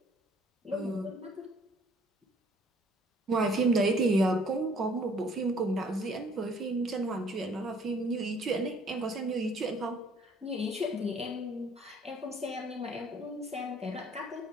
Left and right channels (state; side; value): normal; both; correlation 0.58